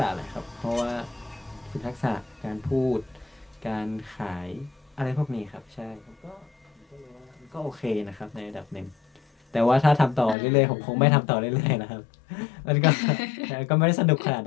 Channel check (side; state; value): right; drops out; at 10.4 s